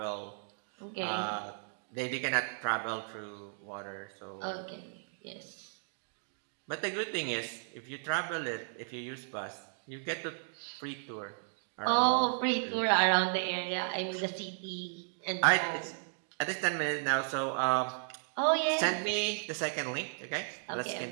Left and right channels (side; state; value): left; silent; digital silence